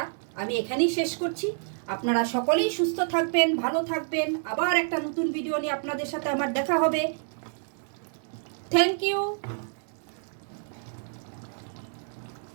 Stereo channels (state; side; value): silent; left; digital silence